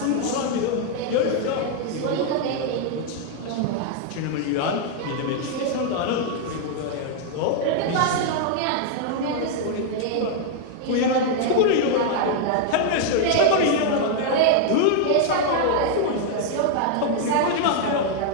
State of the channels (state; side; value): different; both; correlation 0.00